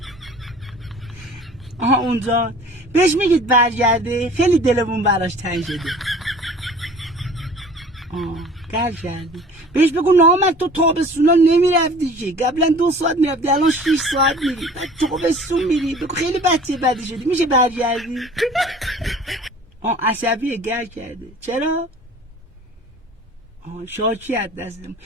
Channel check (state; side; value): normal; both; correlation 0.46